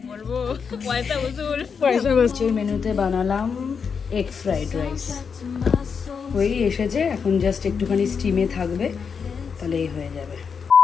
বলবো, পয়সা উসুল। মেনুতে বানালাম এগ ফ্রাইড রাইস, ওই এসেছে, এখন জাস্ট একটুখানি স্টিমে থাকবে, তাহলেই হয়ে যাবে।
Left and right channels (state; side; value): quieter; right; 6.1 dB